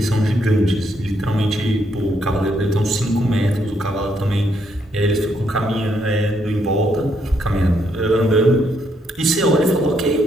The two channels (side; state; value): both; normal; correlation 0.74